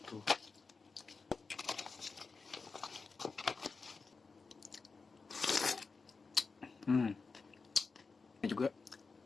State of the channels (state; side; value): quieter; right; 4.5 dB